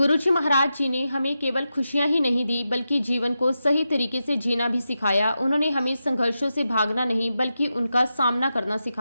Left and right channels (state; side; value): inverted; both; correlation -0.89